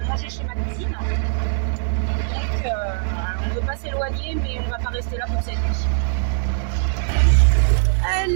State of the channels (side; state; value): left; silent; digital silence